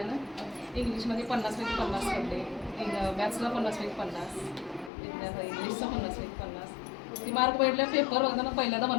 इंग्लिशमध्ये 50पैकी 50 पडले, मॅथ्सला 50पैकी 50, इंग्लिशचा 50पैकी 50. ती मार्क पडल्या पेपर होताना पहिल्यांदा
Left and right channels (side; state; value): right; drops out; at 4.9 s